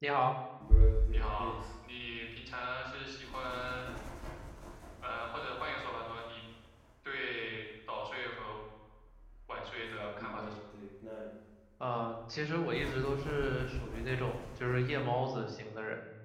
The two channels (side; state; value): both; identical; correlation 1.00